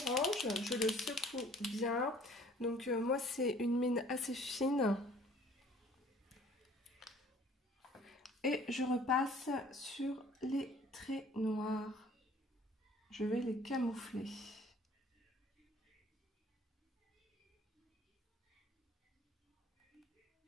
je le secoue bien. Donc moi c'est une mine assez fine. Et je repasse sur les traits noirs. Je vais les camoufler.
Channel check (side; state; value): both; normal; correlation 0.54